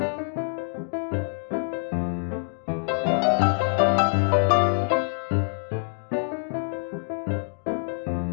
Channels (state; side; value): silent; right; digital silence